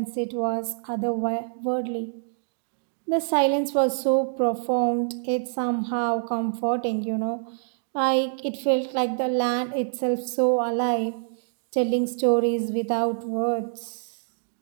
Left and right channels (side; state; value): left; silent; digital silence